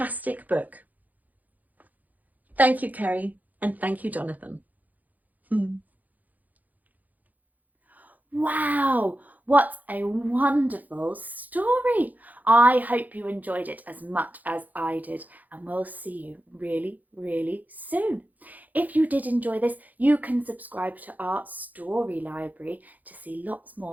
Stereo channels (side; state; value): left; late; 0.081 ms